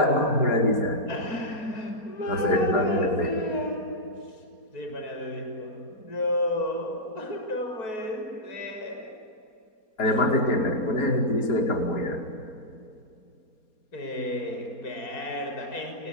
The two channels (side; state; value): right; late; 4.3 ms